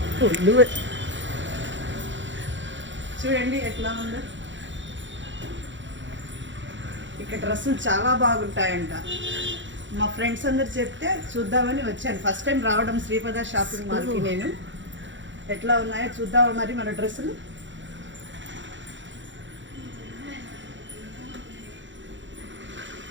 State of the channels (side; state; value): left; late; 0.54 ms